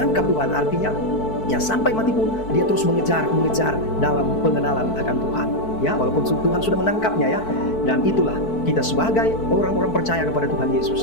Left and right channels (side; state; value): right; late; 4.6 ms